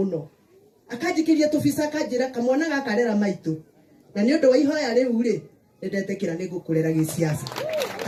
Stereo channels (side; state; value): both; identical; correlation 1.00